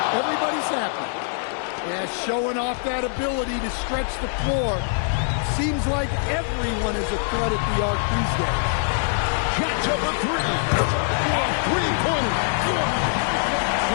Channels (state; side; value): silent; right; 63 dB below the other